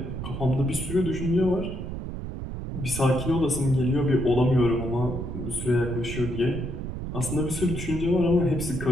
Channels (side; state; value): right; noise; rumble, 6 dB below the sound